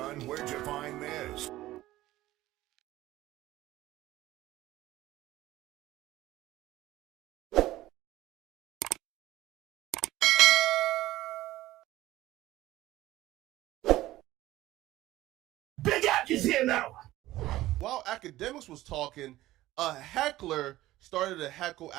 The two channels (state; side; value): quieter; left; 16.0 dB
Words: where'd you find this? Big Ack is here now! While Akademiks was talking, a heckler started to heckle